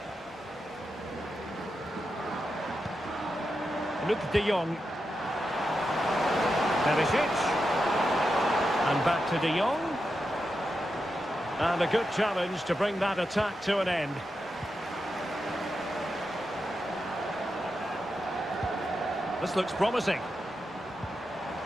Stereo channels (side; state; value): both; normal; correlation 0.88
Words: Luke de Jong. Perisic. And back to de Jong. And a good challenge to bring that attack to an end. This looks promising.